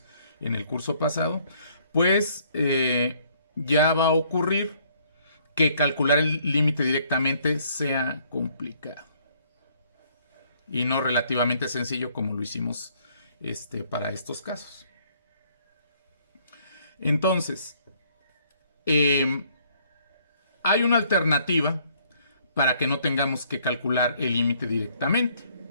en el curso pasado, pues ya va a ocurrir que calcular el límite directamente sea complicado y no relativamente sencillo como lo hicimos para estos casos. Entonces, hay una alternativa para que no tengamos que calcular el límite directamente.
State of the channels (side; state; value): both; inverted; correlation -0.64